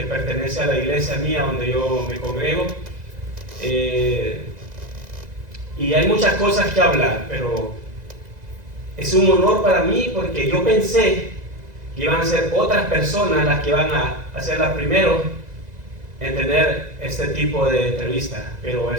pertenece a la iglesia mía donde yo me congrego. Y hay muchas cosas que hablar, pero es un honor para mí porque yo pensé que iban a ser otras personas las que van a ser las primeros en tener este tipo de entrevista. Pero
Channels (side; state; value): left; late; 2.0 ms